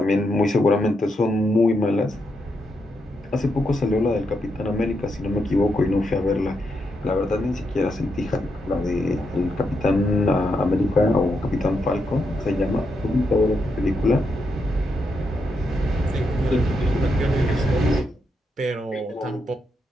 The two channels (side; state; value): both; normal; correlation 0.82